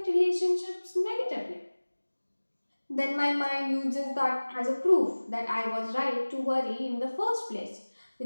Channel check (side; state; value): both; inverted; correlation -1.00